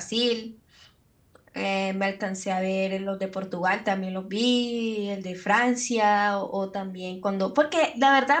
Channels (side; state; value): both; identical; correlation 1.00